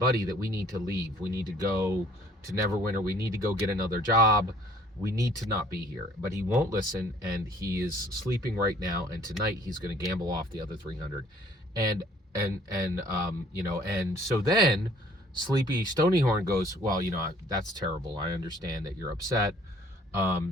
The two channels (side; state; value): both; normal; correlation 0.57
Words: that we need to leave. We need to go to Neverwinter. We need to go get another job. We need to not be here. But he won't listen, and he is sleeping right now. And tonight he's going to gamble off the other 300. And so then Sleepy Stonyhorn goes, well, that's terrible. I understand that you're upset.